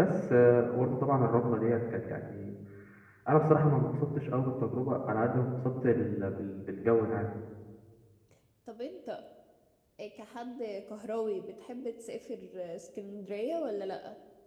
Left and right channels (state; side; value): identical; both; correlation 1.00